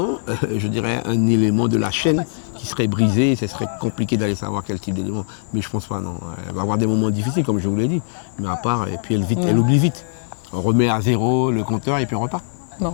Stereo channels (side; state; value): right; silent; 64 dB below the other